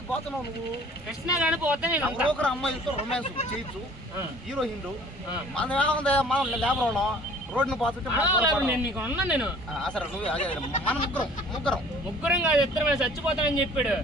పోతున్నావు నువ్వు కృష్ణ గాని పోతే ఒకరు అమ్మాయిలతో రొమాన్స్ చేయొచ్చు హీరోయిన్లు మనం ఏముంది మనం లేబర్ వాళ్ళం రోడ్డును పోతుంటే నేను అసలు నువ్వు అదే మన ముగ్గురం కాదు ఇద్దరు చచ్చిపోతానని చెప్పాడు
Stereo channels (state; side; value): normal; both; correlation 0.51